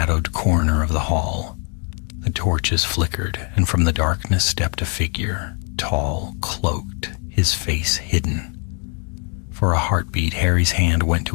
corner of the hall. The torches flickered, and from the darkness stepped a figure, tall, cloaked, his face hidden. For a heartbeat, Harry's hand went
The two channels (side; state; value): right; quieter; 38.8 dB